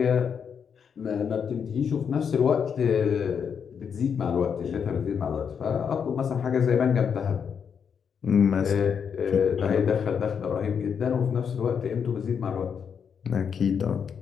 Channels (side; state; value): right; quieter; 7.0 dB